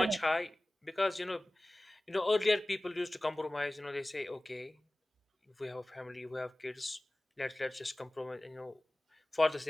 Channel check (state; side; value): normal; both; correlation 0.98